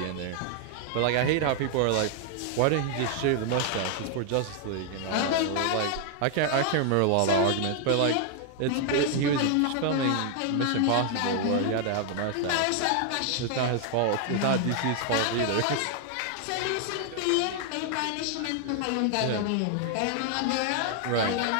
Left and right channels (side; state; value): both; different; correlation 0.00